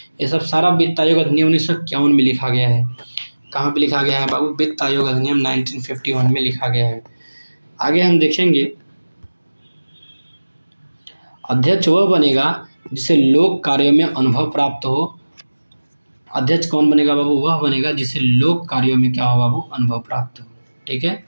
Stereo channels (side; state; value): both; inverted; correlation -1.00